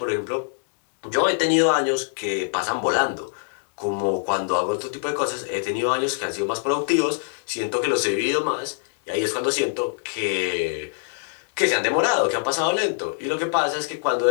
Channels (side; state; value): right; silent; digital silence